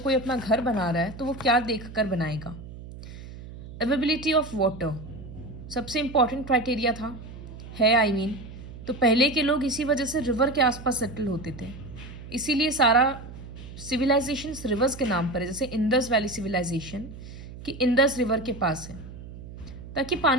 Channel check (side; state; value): right; noise; hum, 14 dB below the sound